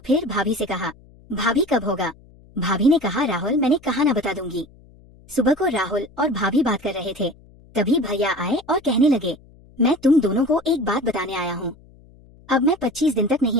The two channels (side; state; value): left; noise; hum, 26 dB below the sound